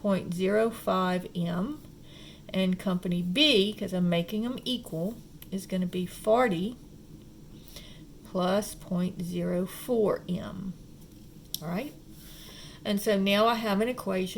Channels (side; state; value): both; identical; correlation 1.00